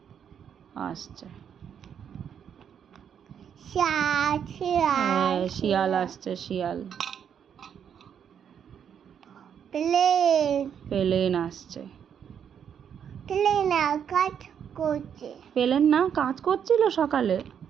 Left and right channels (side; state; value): left; quieter; 8.2 dB